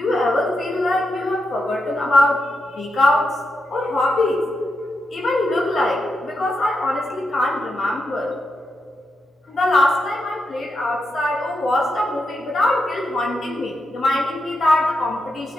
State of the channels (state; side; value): normal; both; correlation 0.85